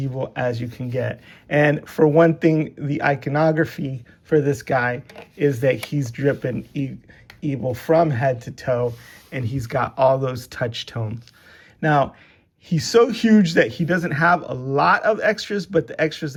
as you can get. And for one thing, the iconography for this guy is that he's dripping evil from head to toe, and he's got all those touch tones. Now, he's so huge that he doesn't have a lot of extras, but the extras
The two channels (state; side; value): identical; both; correlation 1.00